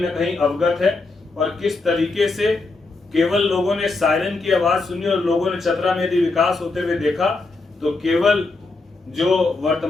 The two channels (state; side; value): quieter; right; 3.5 dB